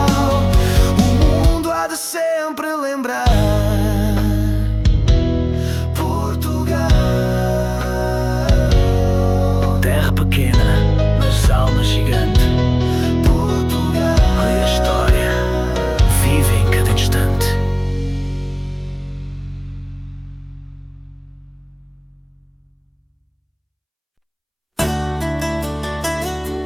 o mundo há de sempre lembrar. Portugal, terra pequena, mas alma gigante. Portugal, a história vive em cada instante.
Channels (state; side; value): identical; both; correlation 1.00